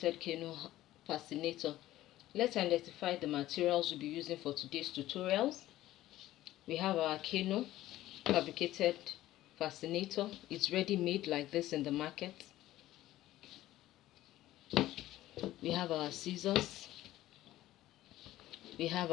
canoe fascinator. Let's identify the materials we'll be using for today's tutorials. We have our canoe fabricated fascinator. It's ready made like this in the market. We have our scissors. We have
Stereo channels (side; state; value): right; quieter; 15.0 dB